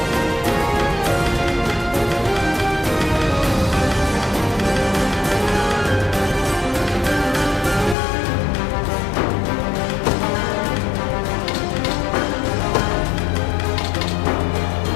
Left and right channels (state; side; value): drops out; right; at 8.0 s